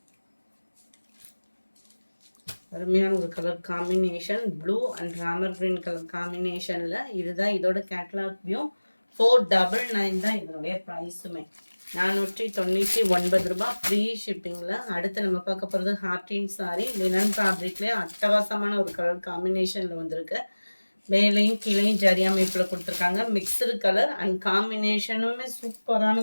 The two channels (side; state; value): both; inverted; correlation -1.00